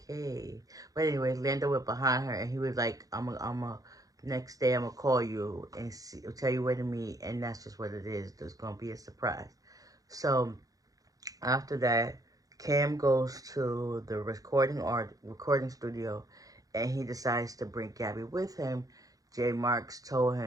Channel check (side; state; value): left; late; 0.17 ms